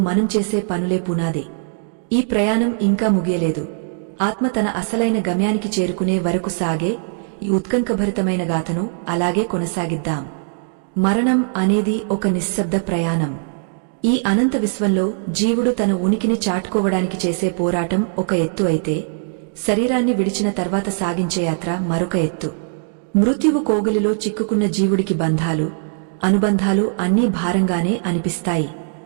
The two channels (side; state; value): left; silent; digital silence